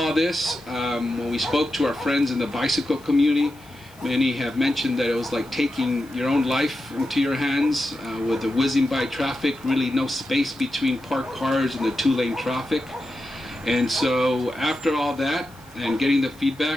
this, when we spoke to our friends in the bicycle community, many have mentioned that it was like taking your own life into your hands with the whizzing by traffic, really no space between parked cars and the 2-lane traffic. And so after all that and getting the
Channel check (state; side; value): noise; left; hiss, 26 dB below the sound